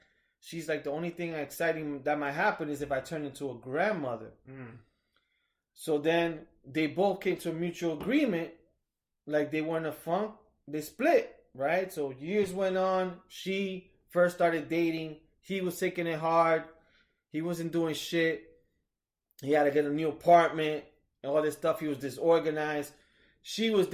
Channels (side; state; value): both; identical; correlation 1.00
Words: She's like, the only thing exciting that might happen is if I turn into a grandmother. So then they both came to a mutual agreement. Like they were in a funk. They split, right? So years went on. She first started dating. He was taking it hard. He wasn't doing shit. He had to get a new apartment and all this stuff. He was disorganized. She was